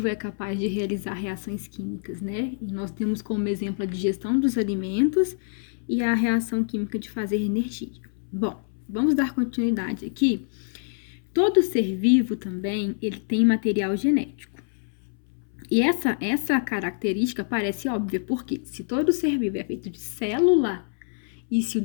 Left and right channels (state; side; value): silent; right; 61 dB below the other